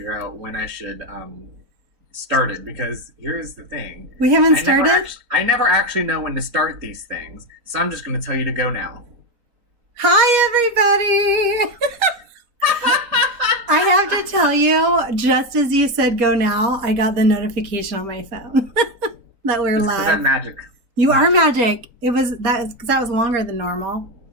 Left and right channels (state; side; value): late; left; 4.1 ms